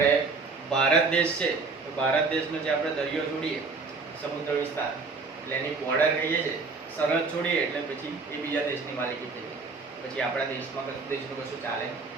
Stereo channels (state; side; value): quieter; left; 4.3 dB